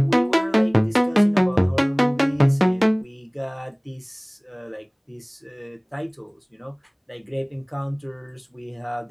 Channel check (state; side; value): identical; both; correlation 1.00